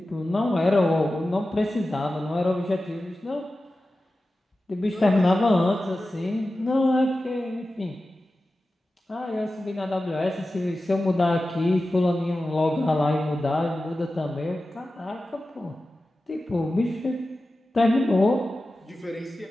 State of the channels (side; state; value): both; normal; correlation 0.94